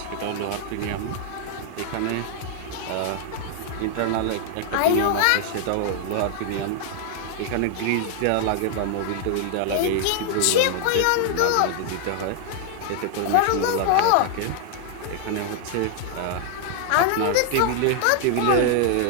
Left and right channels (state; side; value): different; both; correlation 0.00